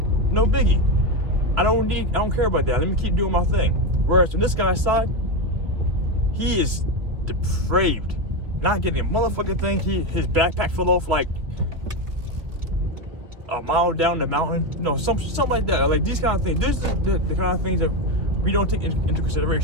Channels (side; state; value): left; late; 2.7 ms